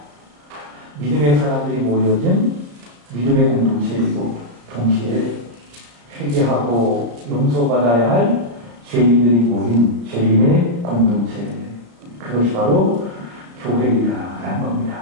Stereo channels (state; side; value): late; left; 34 ms